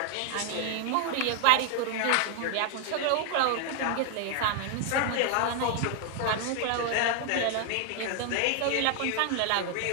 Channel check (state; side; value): different; both; correlation 0.00